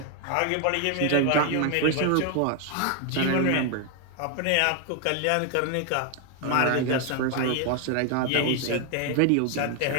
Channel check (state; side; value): different; both; correlation 0.00